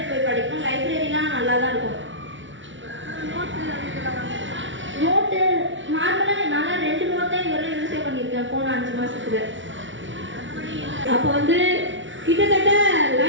போய் படிக்கணும். லைப்ரரிலாம் நல்லா தான் இருக்கும். நோட்டு நார்மலாக நான் 2 நோட்டு இதுவரை யூஸே பண்ணியிருக்கேன் போன 5 மாதத்துக்கு. அப்போ வந்து கிட்டத்தட்ட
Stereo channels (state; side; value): late; left; 0.56 ms